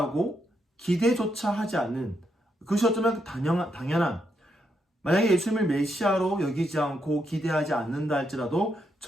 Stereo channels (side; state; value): both; normal; correlation 0.80